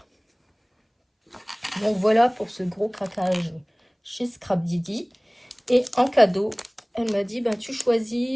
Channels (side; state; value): both; identical; correlation 1.00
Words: Donc voilà pour ce gros craquage chez Scrap Didi. Et en cadeau, elle m'a dit, ben, tu